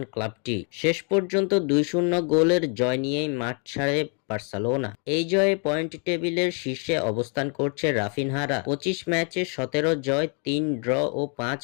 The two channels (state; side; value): quieter; right; 39.0 dB